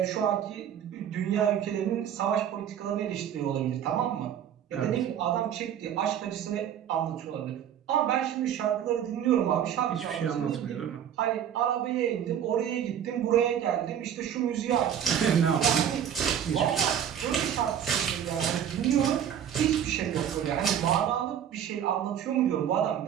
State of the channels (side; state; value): left; quieter; 9.4 dB